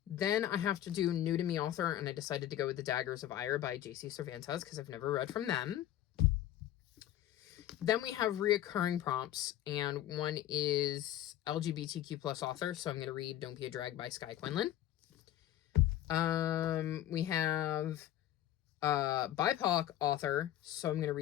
Then I have to do New to Me author, and I decided to go with The Daggers of Ire by J.C. Cervantes, because I've never read from them. Then we have reoccurring prompts, and one is LGBTQ plus author, so I'm going to read Don't Be a Drag by Skye Quinlan. We have BIPOC author, so I'm going to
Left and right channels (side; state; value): right; quieter; 12.6 dB